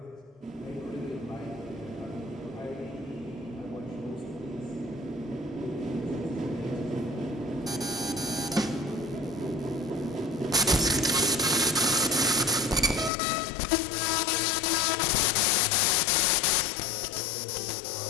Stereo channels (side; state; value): right; drops out; at 13.1 s